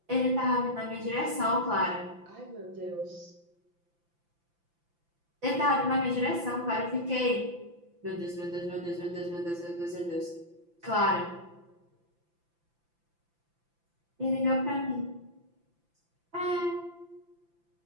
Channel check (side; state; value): left; late; 5.9 ms